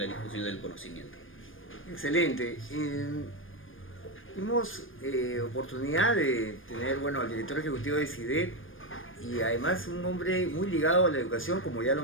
difusión del conocimiento. Excelente. Tuvimos oportunidad de tener, bueno, al director ejecutivo de CIDET, y además un hombre muy ligado a la educación, como ya lo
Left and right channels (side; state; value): right; late; 0.59 ms